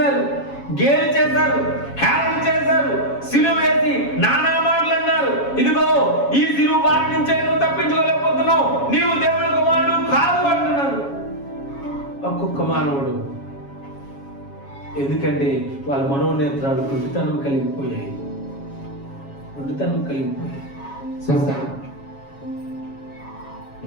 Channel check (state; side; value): late; right; 7.2 ms